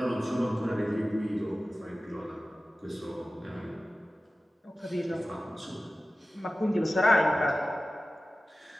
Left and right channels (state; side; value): normal; both; correlation 0.96